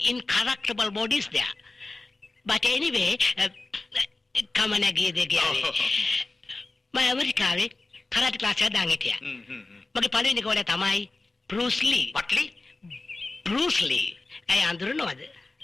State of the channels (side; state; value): right; quieter; 3.3 dB